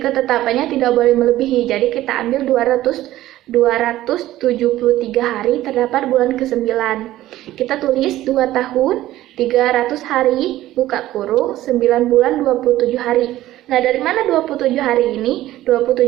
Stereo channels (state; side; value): quieter; left; 15.0 dB